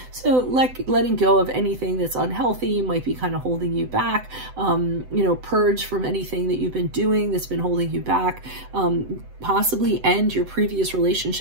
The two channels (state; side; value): late; left; 7.9 ms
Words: So letting go of anything that's unhealthy might be kind of holding you back, you know, purge from anything that you've been doing that's been holding you back, possibly end your previous